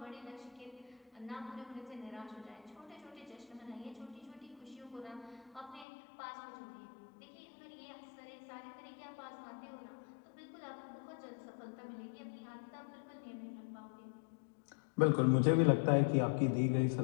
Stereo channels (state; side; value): drops out; right; at 5.9 s